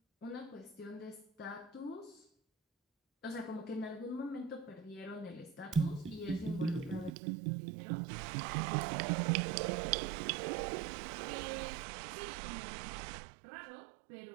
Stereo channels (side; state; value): left; drops out; at 7.1 s